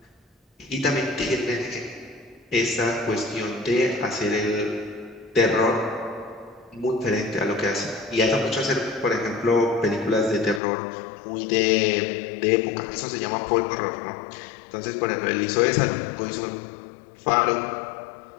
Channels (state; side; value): drops out; right; at 10.6 s